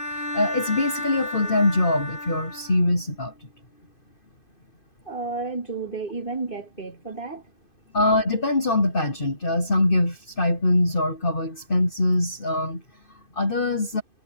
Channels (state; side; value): late; right; 2.5 ms